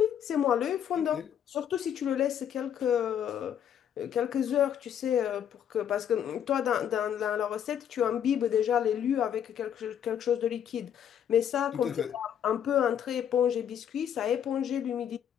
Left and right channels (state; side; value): quieter; right; 9.3 dB